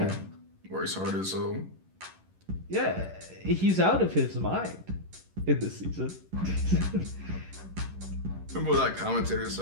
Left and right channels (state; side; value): late; left; 11 ms